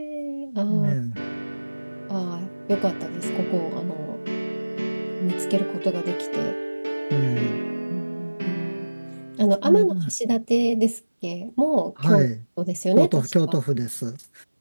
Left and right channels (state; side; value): inverted; both; correlation -1.00